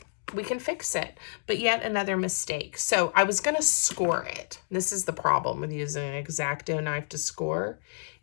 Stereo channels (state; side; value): silent; right; digital silence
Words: we can fix it, but yet another mistake. So I was going to score it. This is the problem with using an X-Acto knife to score.